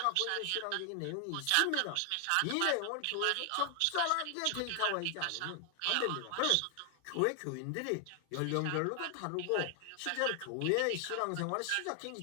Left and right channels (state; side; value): different; both; correlation 0.00